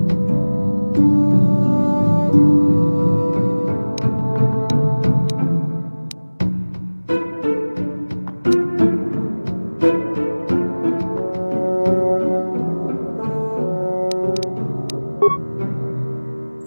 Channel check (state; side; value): inverted; both; correlation -1.00